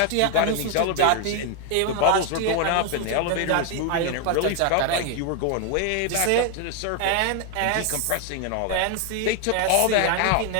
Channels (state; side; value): different; both; correlation 0.00